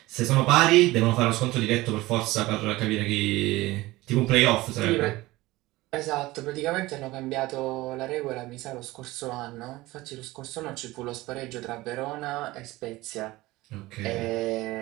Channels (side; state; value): left; quieter; 19.2 dB